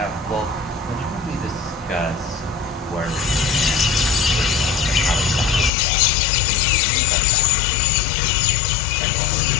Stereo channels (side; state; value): right; drops out; at 5.7 s